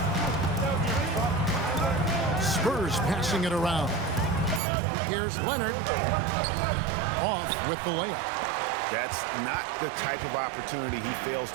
Spurs passing it around. Here's Leonard. Off with the layup. That's not the type of opportunity he fails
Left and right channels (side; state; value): left; drops out; at 4.6 s